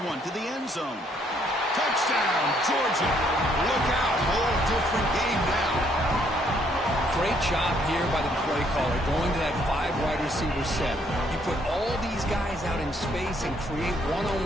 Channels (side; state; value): both; normal; correlation 0.68